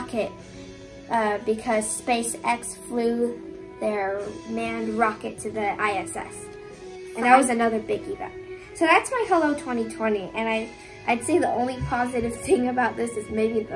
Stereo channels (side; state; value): both; identical; correlation 1.00